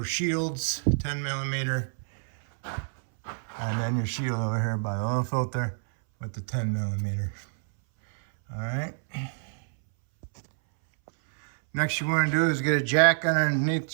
shields, 10mm. And then your shield over here by the oil filter with the 10mm. All right. Next you want to do is get a jack underneath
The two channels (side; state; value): left; silent; 60 dB below the other